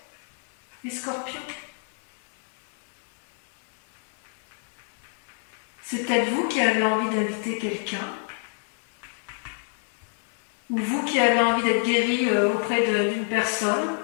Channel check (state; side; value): silent; right; 60 dB below the other